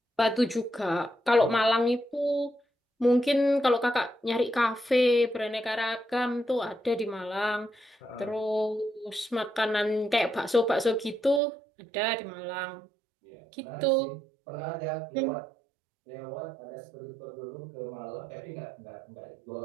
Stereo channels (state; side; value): drops out; left; at 11.4 s